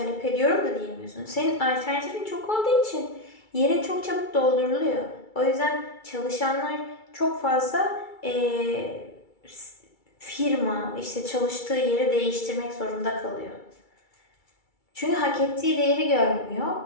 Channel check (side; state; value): right; late; 2.3 ms